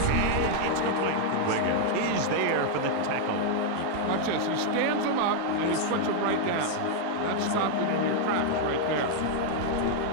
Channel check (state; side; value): different; both; correlation 0.00